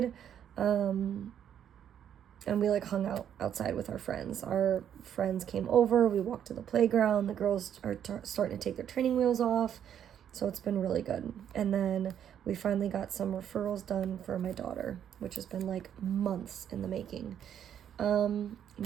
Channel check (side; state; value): left; quieter; 9.4 dB